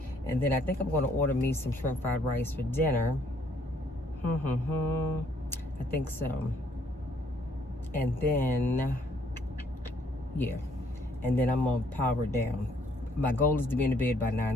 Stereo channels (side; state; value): both; normal; correlation 0.65